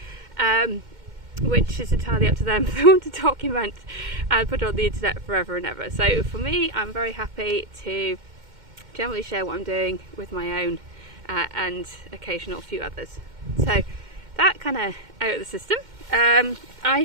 which is entirely up to them if they want to document and put it on the internet forever and ever. So for me, I'm very happy to generally share what I'm doing with my own and occasional few others. So that kind of out of the system.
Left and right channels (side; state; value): left; late; 2.1 ms